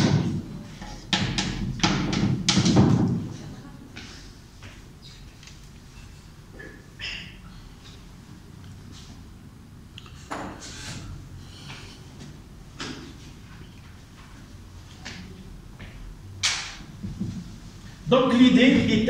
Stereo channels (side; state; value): both; identical; correlation 1.00